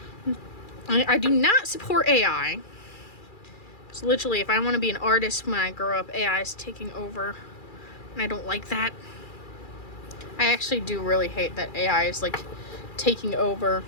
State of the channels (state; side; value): late; right; 2.4 ms